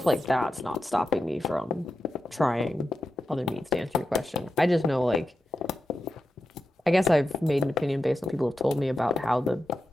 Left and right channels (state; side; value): normal; both; correlation 0.90